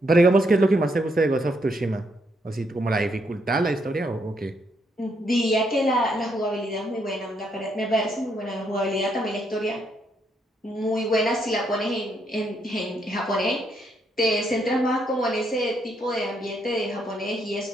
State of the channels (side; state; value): both; normal; correlation 0.75